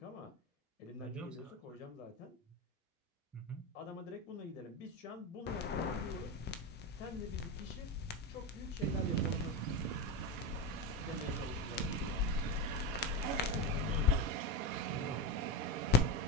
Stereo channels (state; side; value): normal; both; correlation 0.20